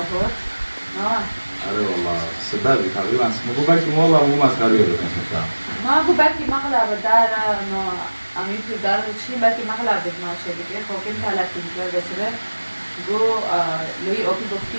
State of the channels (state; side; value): inverted; both; correlation -1.00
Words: نه آره والله سببی تقریبا مگو بکی والله مو مسخره رو کنم ما گو بکی مقلب در نه امی تو در چی بکی مقلب ما شده که خب این تلقی می‌کنه بسیار گو لوی آبی گفتی